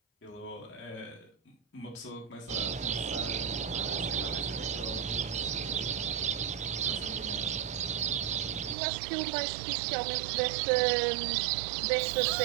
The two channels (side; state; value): left; drops out; at 8.8 s